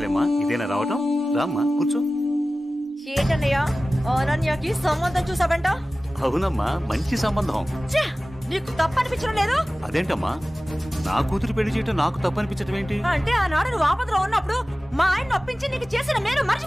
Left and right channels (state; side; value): normal; both; correlation 0.97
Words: ఇదేనా రావటం? రామ్మా కూర్చో. ఏంటన్నయ్య అనన్యకి సంబంధం చూసావంట? అవునమ్మా, మంచి సంబంధం. నీకు తప్పనిపించడం లేదు? అదేంటమ్మా, నా కూతురు పెళ్లి చేయటం నాకు తప్పనిపించటం ఏంటి? అంటే ఆనాడు నువ్వు ఆపదలో ఉన్నప్పుడు మా ఆయన ఒప్పించి నీకు చేసిన మేలు